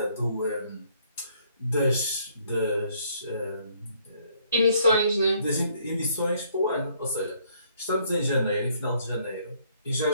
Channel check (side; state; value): both; inverted; correlation -0.66